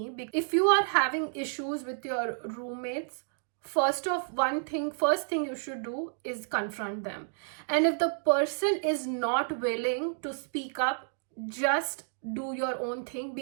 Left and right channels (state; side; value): silent; left; digital silence